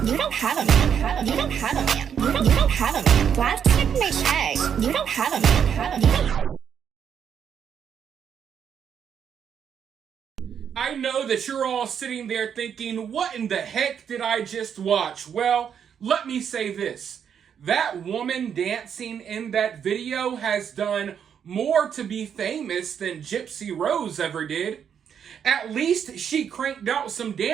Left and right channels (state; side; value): quieter; left; 8.0 dB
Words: You don't have a man. You don't have a man. You don't have a man. Plastic makes eggs. You don't have a man. You don't. I know that you're all sitting there thinking, what in the heck did I just watch? Well, let me say this. That woman dancing in that video has done more to be famous than Gypsy Rose ever did. At least she cranked out some